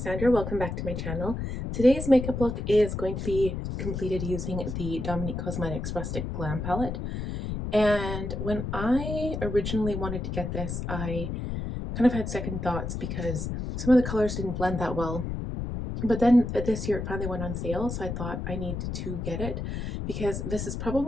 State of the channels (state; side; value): noise; left; rumble, 4 dB below the sound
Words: Sandra. Welcome back to my channel. Today's makeup look is going to be completed using the Dominique Cosmetics Rustic Glam palette. And when I originally wanted to get this, I kind of had second thoughts because some of the colors didn't blend that well. But then this year it finally went on sale, so I thought I need to get it because this is